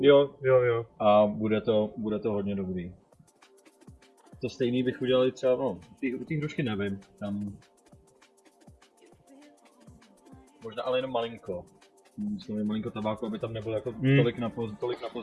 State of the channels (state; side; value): identical; both; correlation 1.00